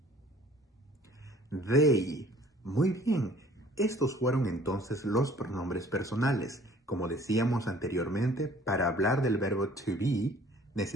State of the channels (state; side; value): normal; both; correlation 0.53